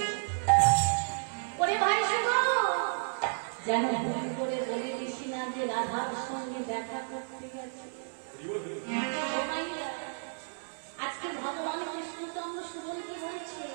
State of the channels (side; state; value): left; silent; digital silence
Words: ওরে ভাই শোনো, যেন ভুল করে বলে দিছি না যে রাধার সঙ্গে দেখা করতে গেছে। আজকে ভগবান কৃষ্ণচন্দ্র সুবলকে বলছে,